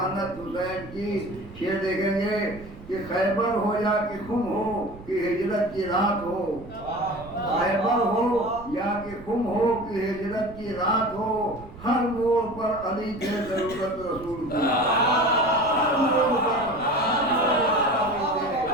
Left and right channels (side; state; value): right; noise; rumble, 17 dB below the sound